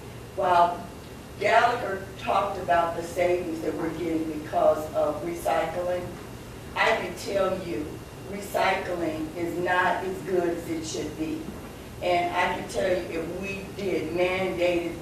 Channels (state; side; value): identical; both; correlation 1.00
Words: While Gallagher talked about the savings that we're getting because of recycling, I can tell you recycling is not as good as it should be. And I can tell you if we did mandated